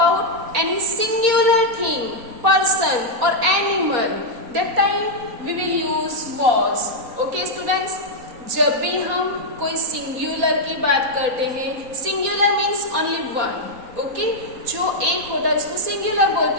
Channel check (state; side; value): late; left; 4.1 ms